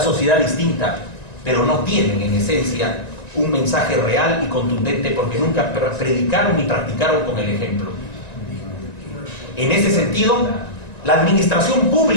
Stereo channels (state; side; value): late; right; 1.9 ms